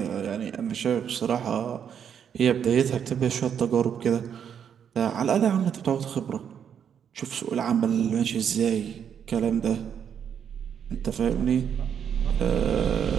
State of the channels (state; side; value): quieter; left; 8.2 dB